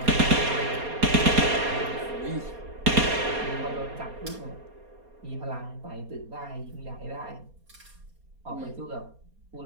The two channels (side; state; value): left; late; 4.2 ms